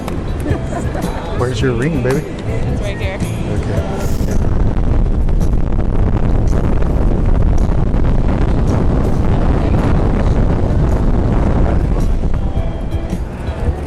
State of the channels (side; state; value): both; identical; correlation 1.00